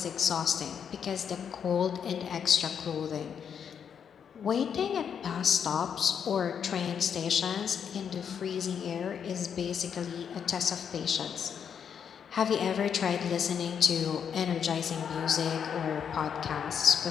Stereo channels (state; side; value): quieter; right; 7.6 dB